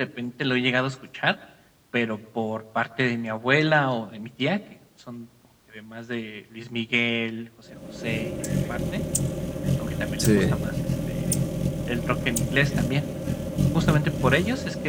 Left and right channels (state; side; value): identical; both; correlation 1.00